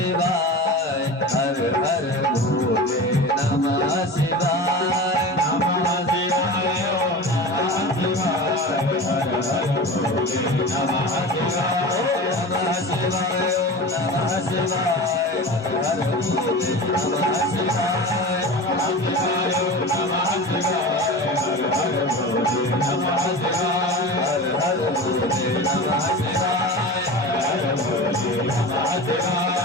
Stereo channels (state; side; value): normal; both; correlation 0.32